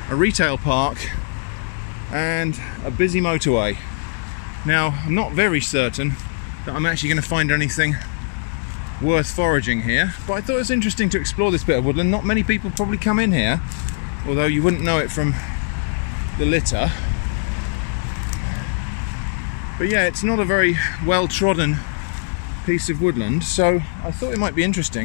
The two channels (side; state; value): right; silent; digital silence